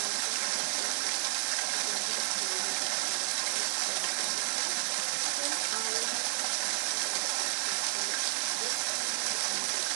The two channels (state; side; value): silent; left; 57 dB below the other